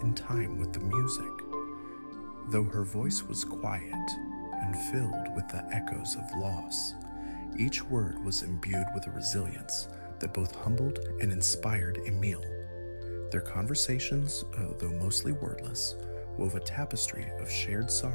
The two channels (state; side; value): inverted; both; correlation -1.00